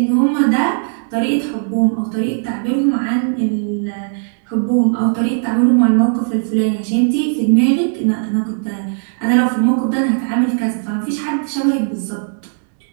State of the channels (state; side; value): silent; left; digital silence